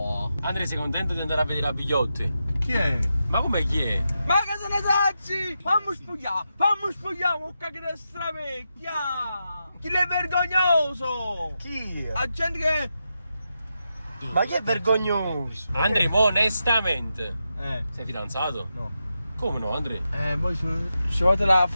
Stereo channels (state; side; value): inverted; both; correlation -0.87